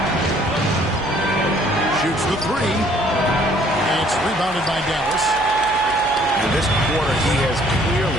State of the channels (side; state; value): left; noise; hum, 17 dB below the sound